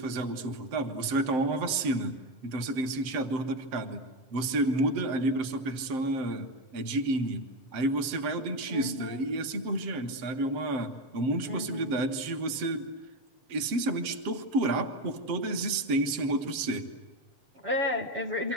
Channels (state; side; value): late; left; 7.7 ms